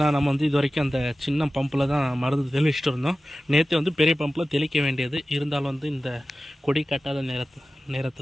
நம்ம வந்து இது வரைக்கும் அந்த சின்ன பம்பில் தான் மருந்து தெளிச்சுட்டு இருந்தோம். நேற்று வந்து பெரிய பம்பில் தெளிக்க வேண்டியது இருந்தாலும் வந்து இந்த கொடி கட்டாத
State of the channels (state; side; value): normal; both; correlation 0.95